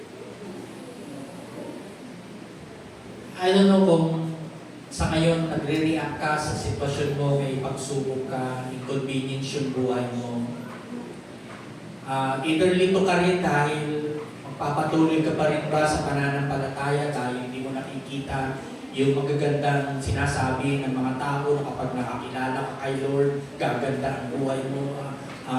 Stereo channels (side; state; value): both; identical; correlation 1.00